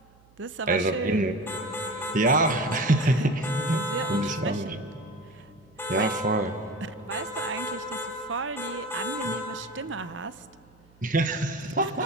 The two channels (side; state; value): right; noise; hum, 29 dB below the sound